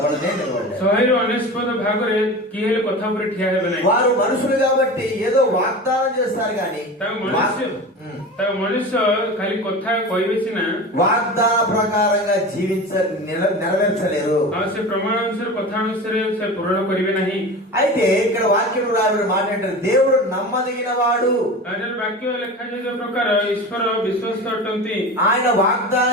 100% ଭାଗରେ କିଏ ହେଲେ କଥା ଉପରେ ଠିଆ ହେବେ ନାହିଁ। వారు మనుషులు కాబట్టి ఏదో వాగ్దానం చేస్తారు కానీ ତାଙ୍କ ମନୁଷ୍ୟ ଖାଲି କଥା କହିବେ ସିନା, వాగ్దాన ప్రకారంగా నెరవేర్చలేరు. ଆଉ ସେ ପ୍ରମାଣ ଅନୁସାରେ କଥା ଅନୁସାରେ ସେ ପୂରଣ କରିବେ ନାହିଁ। అయితే ఇక్కడ వాక్యం రాబడిన మాట ఏంటంటే దేవుడు నమ్మదగిన వాడు. ବାକ୍ୟ ଲେଖାଯାଇଥିବା ପ୍ରକାର ଈଶ୍ୱର ବିଶ୍ୱସ୍ତ ଅଟନ୍ତି। ఆయన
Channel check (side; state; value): both; normal; correlation 0.31